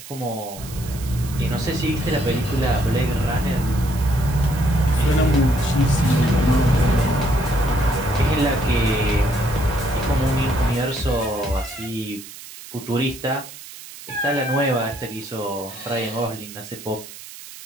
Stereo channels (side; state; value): right; noise; hiss, 15 dB below the sound